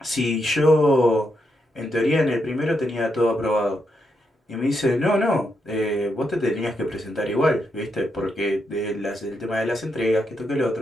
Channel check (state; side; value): normal; both; correlation 0.82